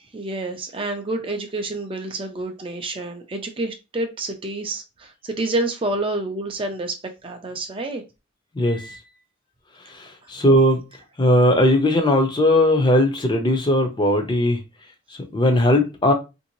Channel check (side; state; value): both; normal; correlation 0.45